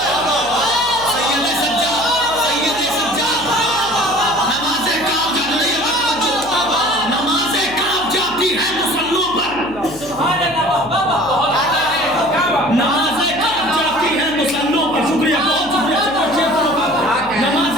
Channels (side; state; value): left; noise; hum, 19 dB below the sound